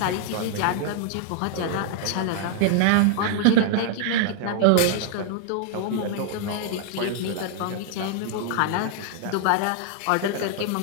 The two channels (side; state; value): both; different; correlation -0.01